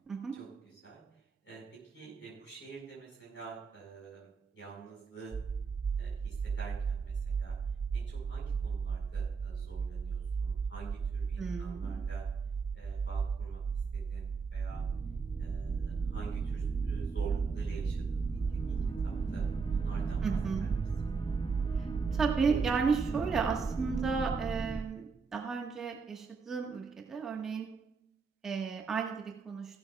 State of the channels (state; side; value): quieter; left; 5.1 dB